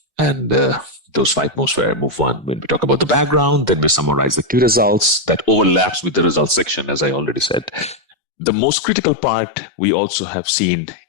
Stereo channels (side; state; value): right; drops out; at 8.2 s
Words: And those 5 moves were move 1, when we talk about the background, then we summarize the key results that overlaps with the results section, as I already said. The most critical part we also have seen